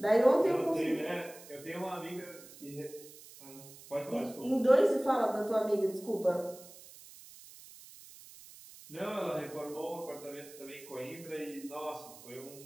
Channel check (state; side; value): noise; right; hiss, 19 dB below the sound